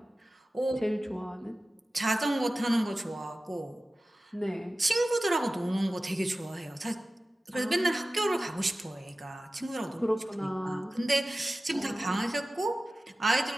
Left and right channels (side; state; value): both; normal; correlation 0.96